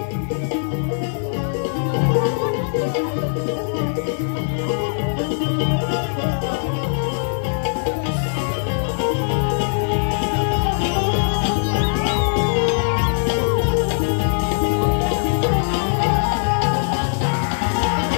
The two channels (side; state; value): right; silent; digital silence